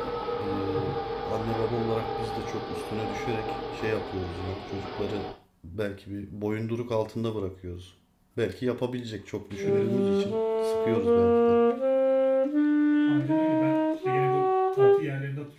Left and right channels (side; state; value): both; identical; correlation 1.00